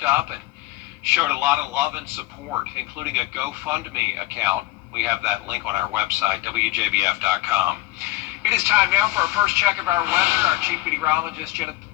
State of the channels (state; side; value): quieter; right; 17.7 dB